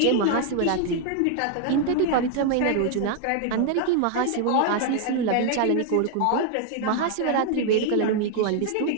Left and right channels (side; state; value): both; different; correlation 0.00